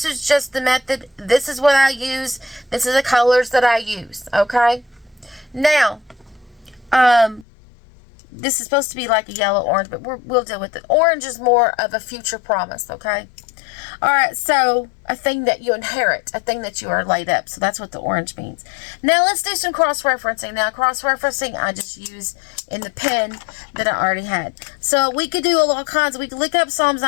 is just the method. This is what I use. This is the colors that I use. Okay, now, this is supposed to be like a yellow orange, but we'll deal with it. Orange is more of a future promise. Okay. All right, so a thing that you inherit, a thing that you are laid up. So that's what the orange means. Now let's do some cross-referencing. Now cross-referencing I just use in the pen that I already had. So we could do all kinds. We could look up Psalms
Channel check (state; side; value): drops out; right; at 7.5 s